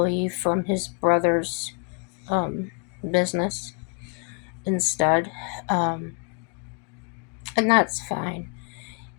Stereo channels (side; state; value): right; quieter; 35.8 dB